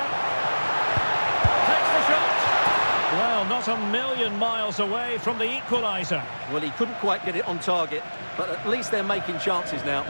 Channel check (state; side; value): inverted; both; correlation -1.00